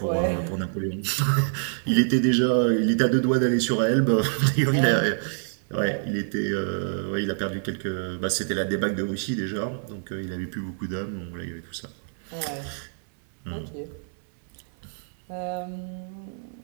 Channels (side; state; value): left; silent; 61 dB below the other